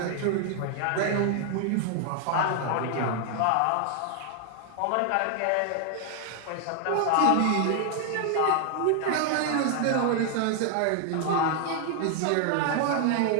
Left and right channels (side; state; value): both; different; correlation 0.00